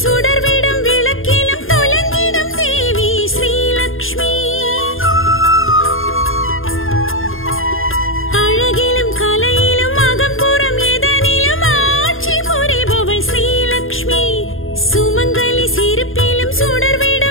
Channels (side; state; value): right; late; 0.60 ms